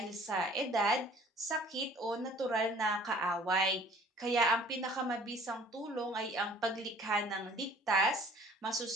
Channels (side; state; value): both; normal; correlation 0.52